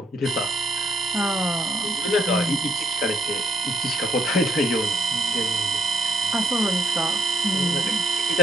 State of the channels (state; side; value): normal; both; correlation 0.72